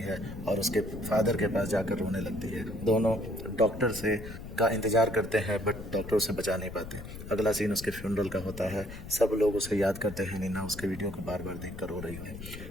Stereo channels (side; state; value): left; noise; rumble, 11 dB below the sound